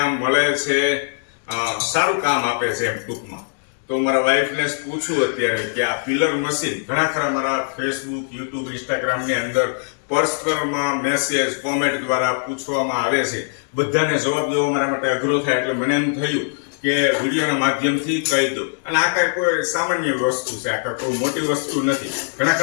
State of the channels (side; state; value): right; silent; digital silence